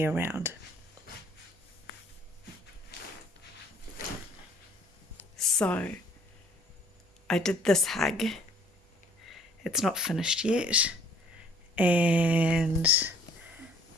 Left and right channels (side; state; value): both; normal; correlation 0.57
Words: around. So, I did this hug. It's not finished yet, and